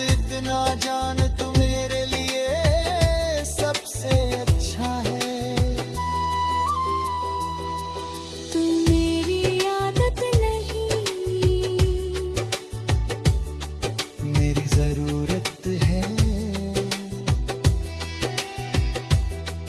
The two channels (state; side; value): identical; both; correlation 1.00